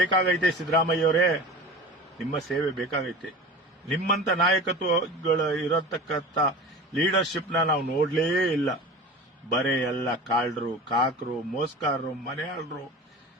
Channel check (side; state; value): both; normal; correlation 0.35